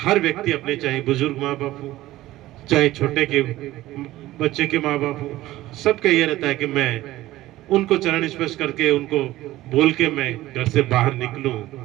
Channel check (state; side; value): quieter; left; 16.2 dB